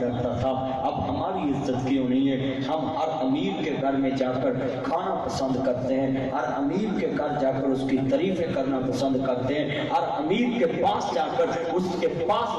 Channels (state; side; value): identical; both; correlation 1.00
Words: تھا اب ہماری عزت کیوں نہیں ہے ہم ہر امیر کے گھر میں جا کر کھانا پسند کرتے ہیں ہر امیر کے گھر جا کر اس کی تعریفیں کرنا پسند کرتے ہیں ہر امیر کے پاس جا کر اس کے